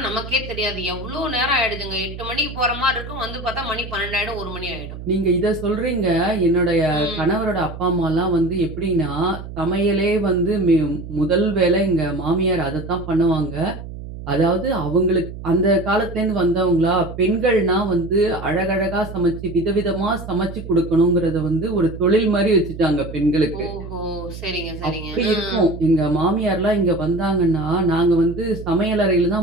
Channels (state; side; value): noise; right; hum, 11 dB below the sound